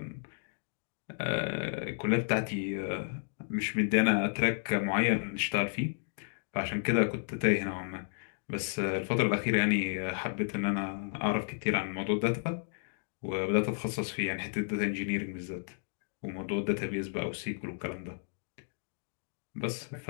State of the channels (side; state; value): right; silent; digital silence